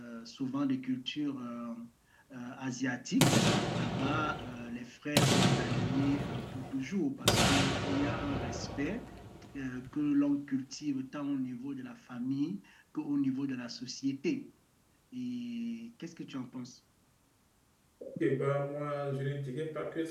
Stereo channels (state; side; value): identical; both; correlation 1.00